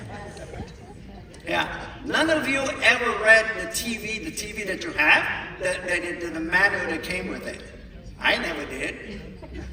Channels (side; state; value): both; identical; correlation 1.00